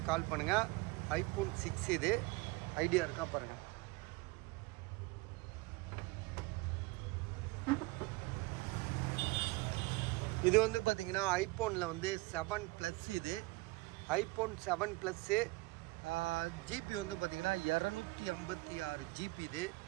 கால் பண்ணுங்கள். ஐஃபோன் 6 இது ஐடியா இருக்கா பாருங்கள். இது வந்து பார்த்திங்கன்னா ஐஃபோனில் வந்து 7+ இது ஐஃபோன் 7+. ஜிபி வந்து பார்த்திங்கன்னா 256 GB இது.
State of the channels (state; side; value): quieter; left; 23.0 dB